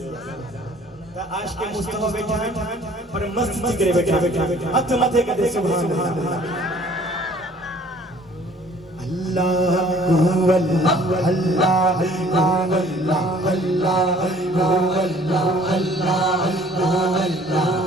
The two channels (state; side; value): normal; both; correlation 0.55